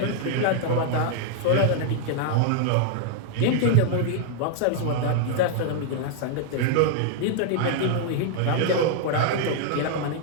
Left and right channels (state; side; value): different; both; correlation 0.00